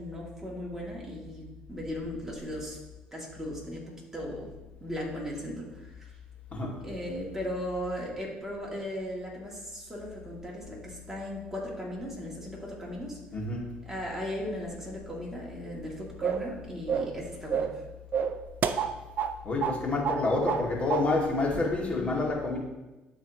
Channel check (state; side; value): normal; both; correlation 0.60